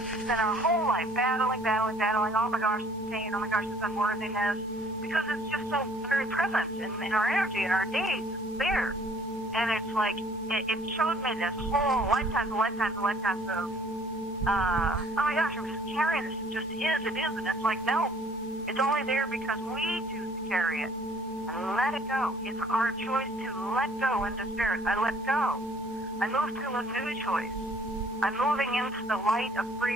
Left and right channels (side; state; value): both; normal; correlation 0.57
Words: we spend our whole life battling, oh my gosh, it's pain, oh my gosh, it's unworthiness, because it's just so very present in our energy, in our days, it's there. And it's like, it showed me this whole lifetimes of, oh my gosh, I'm just carrying this, it just is, and it's like, no, it's only there because we choose to carry it. And let it go. It's our choice to let go into spirit. I let go. I move to a new choice. I'm moving into the light of